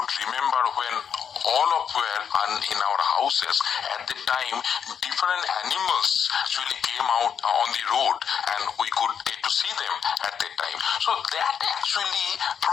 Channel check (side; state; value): right; quieter; 7.7 dB